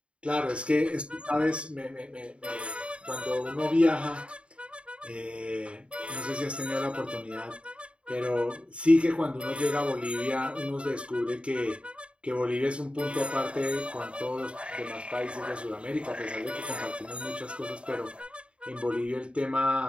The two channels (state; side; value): late; left; 0.058 ms